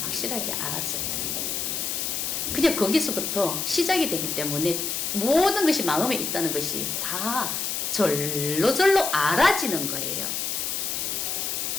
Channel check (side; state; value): left; noise; hiss, 1 dB below the sound